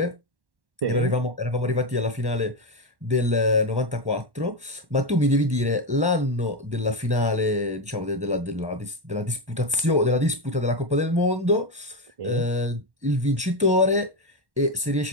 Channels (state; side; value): late; left; 1.1 ms